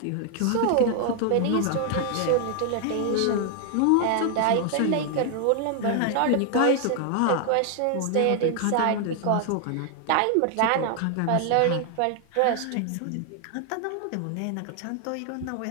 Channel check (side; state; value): both; different; correlation 0.00